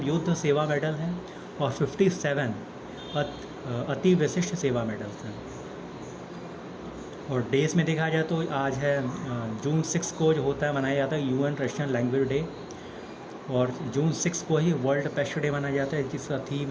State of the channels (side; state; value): both; identical; correlation 1.00